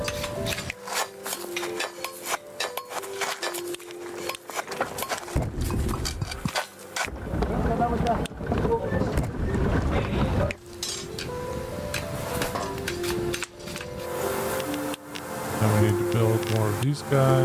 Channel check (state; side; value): identical; both; correlation 1.00